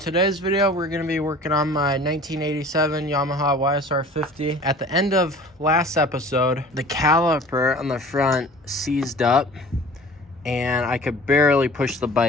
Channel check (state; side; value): normal; both; correlation 0.45